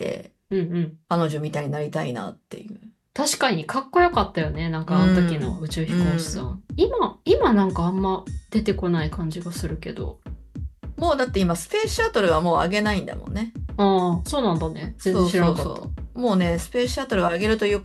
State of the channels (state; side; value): identical; both; correlation 1.00